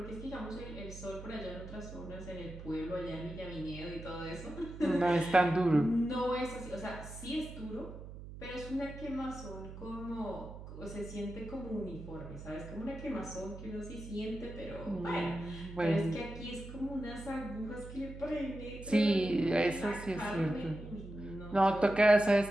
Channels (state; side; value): noise; right; hum, 12 dB below the sound